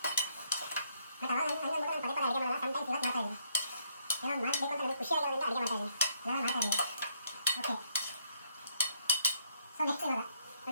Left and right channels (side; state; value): both; inverted; correlation -0.72